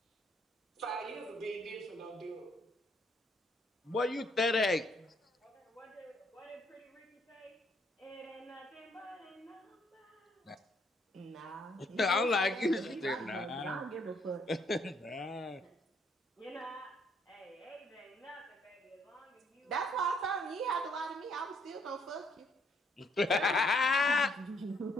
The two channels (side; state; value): both; normal; correlation 0.69